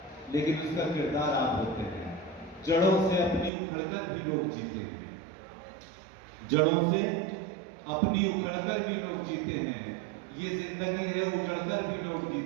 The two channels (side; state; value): left; drops out; at 3.5 s